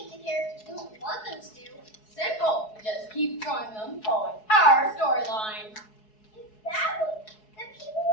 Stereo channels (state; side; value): late; right; 4.7 ms